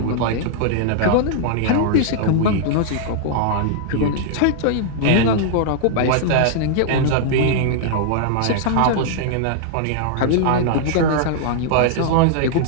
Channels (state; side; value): different; both; correlation -0.01